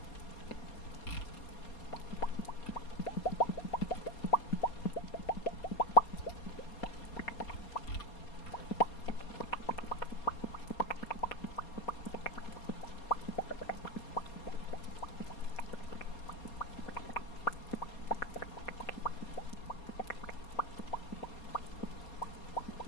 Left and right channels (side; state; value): right; late; 4.2 ms